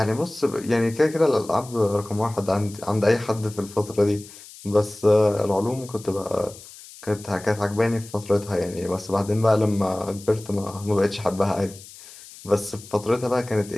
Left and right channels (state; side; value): noise; left; hiss, 18 dB below the sound